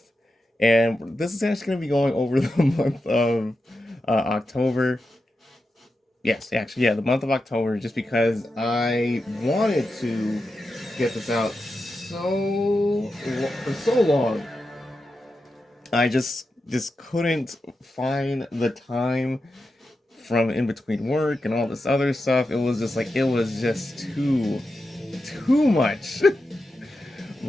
And this is actually going to be going over the month of October. Yes, actually, yeah, the month of October, just because I wanted to get this out for so long. I just couldn't find the time from in between work and all this other stuff. It was just too much.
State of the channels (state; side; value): normal; both; correlation 0.89